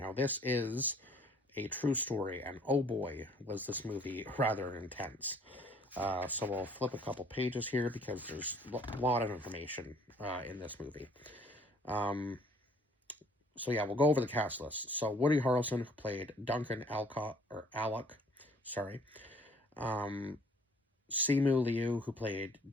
this is a true story, and oh boy, was this movie rather intense. So we'll flip a couple pages here because there's a lot of information in this movie. Um, so yeah, we'll go over the cast list. So Woody Harrelson, who played Duncan Alcott or Alec, sorry. Um, Simu Liu, who played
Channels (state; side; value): normal; both; correlation 0.57